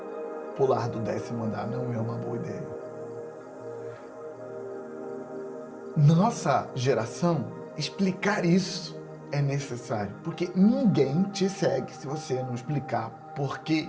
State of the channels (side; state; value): both; identical; correlation 1.00